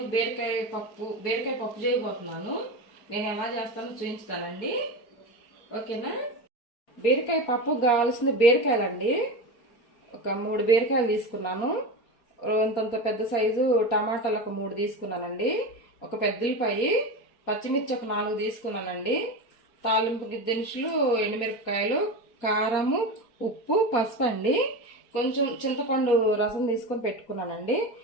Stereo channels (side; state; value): right; late; 4.2 ms